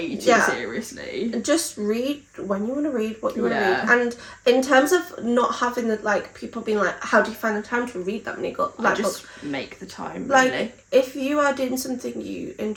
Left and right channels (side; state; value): both; identical; correlation 1.00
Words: too seriously. Just read when you want to read, what you want to read. And in terms of not having the, like, people being like, how do you find the time to read that many books? Like, just make the time, really. Like, if you are doing something you